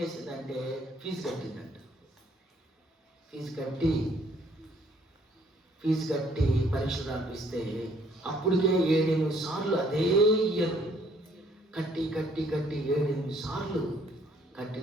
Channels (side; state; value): both; normal; correlation 0.63